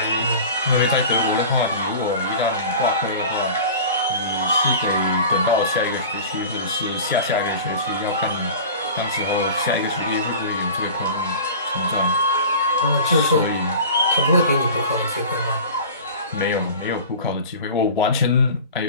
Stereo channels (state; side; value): inverted; both; correlation -0.37